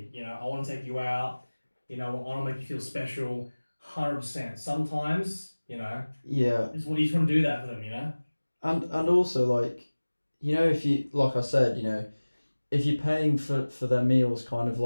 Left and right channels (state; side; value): inverted; both; correlation -1.00